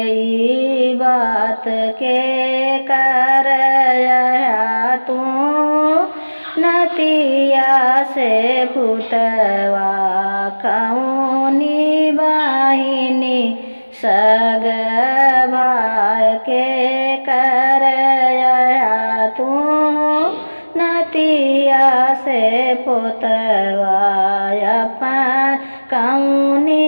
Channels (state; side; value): inverted; both; correlation -1.00